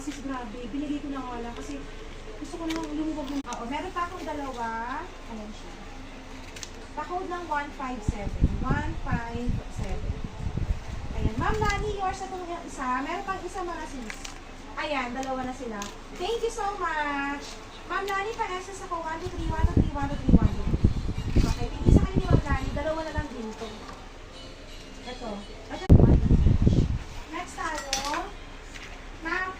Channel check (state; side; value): identical; both; correlation 1.00